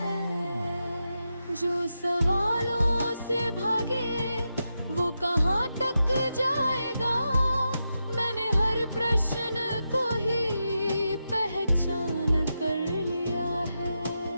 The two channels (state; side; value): inverted; both; correlation -0.88